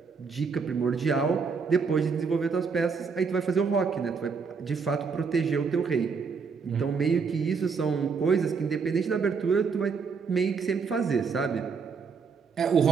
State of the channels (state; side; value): quieter; left; 5.4 dB